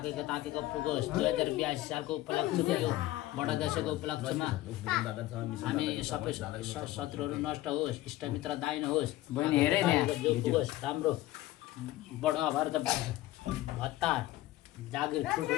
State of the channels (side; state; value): right; quieter; 16.1 dB